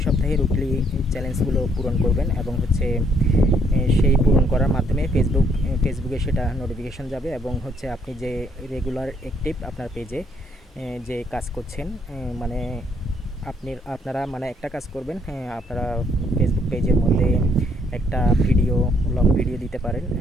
সপ্তাহে উইকলি চ্যালেঞ্জগুলো পূরণ করবেন এবং হচ্ছে সেই পূরণ করার মাধ্যমে ফেসবুকে সেটা নোটিফিকেশন যাবে এবং হচ্ছে আপনি যে রেগুলার অ্যাক্টিভ আপনার পেজে যে কাজ করছেন, মানে আপনারা মানে একটা কাজ করবেন, আপনারা ফেসবুক পেজের মধ্যে একটা লং ভিডিও দিতে পারেন,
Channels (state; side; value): normal; both; correlation 0.68